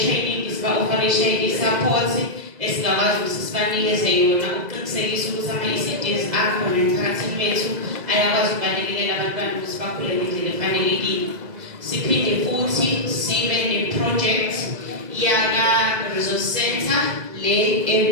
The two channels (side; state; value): left; late; 2.0 ms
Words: siba-oferisha i-support esingakwazi ukuthi sibanikeze yona ukuqinisekisa ukuthi ama-ECDs akhona emphakathini wethu ayakwazi ukubalekelela abantwana ukuthi bakhule ngendlela efanelekile. Siphinde futhi sibe ne-project yaka-resource center le